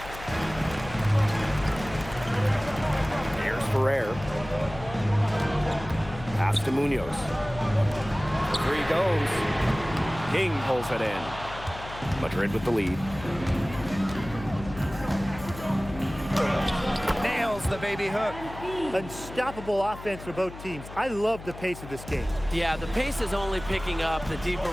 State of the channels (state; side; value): noise; left; hum, 14 dB below the sound